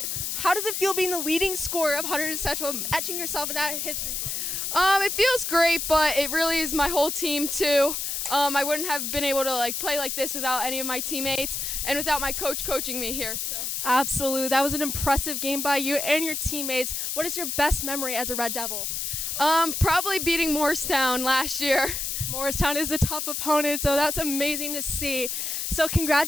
How does it feel being the leading scorer of Hunterdon Central, etching yourself in that history book? It feels great, but it really is my whole team too. I wouldn't have been able to play like this without any of my teammates and without my coach coaching me here. So. Absolutely. That was an impressive game by you and your teammates. What is your best memory as a Red Devil? Probably beating Morristown last year. Morristown is a tough opponent, so that's amazing to see. So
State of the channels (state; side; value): noise; left; hiss, 2 dB below the sound